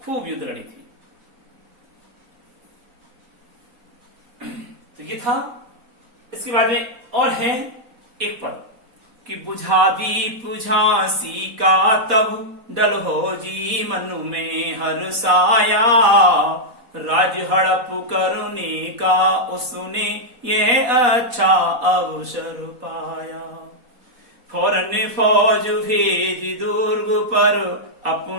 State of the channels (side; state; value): left; late; 4.1 ms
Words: खूब युद्ध लड़ी थी। तो ये था। इसके बाद में और है एक पद कि बुझा दीप झांसी का तब डलहो जी मन में हर्षाया, राज हड़प करने का उसने यह अच्छा अवसर पाया। फौरन फौज भेज दुर्ग पर